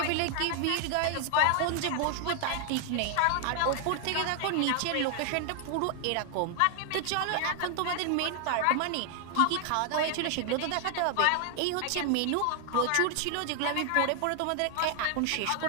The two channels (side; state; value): both; different; correlation 0.00